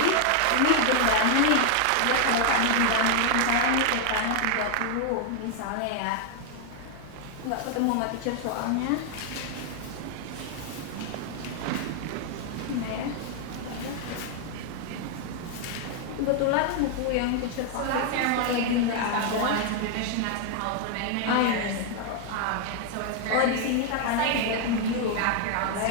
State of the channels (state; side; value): different; both; correlation 0.00